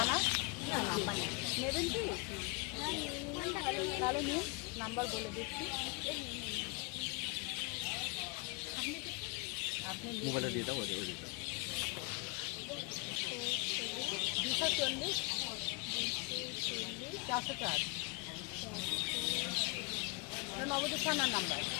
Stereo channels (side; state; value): right; quieter; 29.7 dB